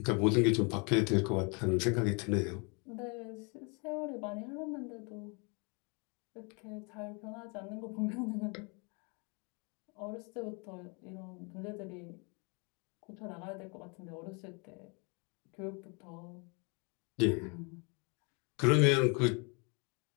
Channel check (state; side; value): quieter; right; 32.8 dB